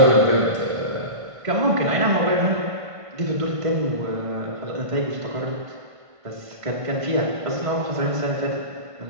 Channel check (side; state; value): left; late; 1.5 ms